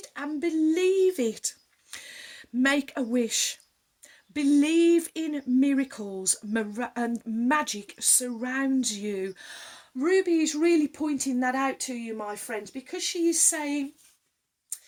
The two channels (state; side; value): identical; both; correlation 1.00